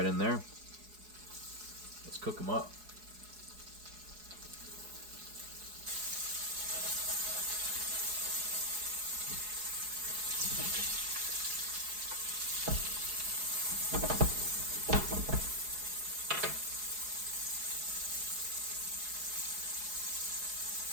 in there. Let's cook them up.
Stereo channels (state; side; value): late; left; 4.7 ms